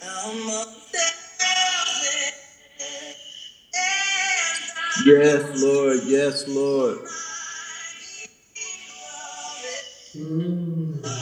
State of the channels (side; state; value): both; identical; correlation 1.00